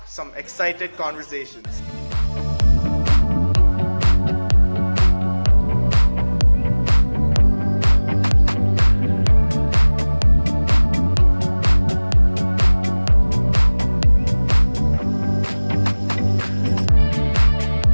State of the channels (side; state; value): both; inverted; correlation -1.00